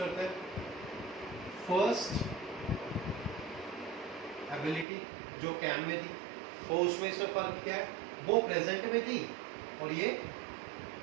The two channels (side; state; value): left; drops out; at 4.9 s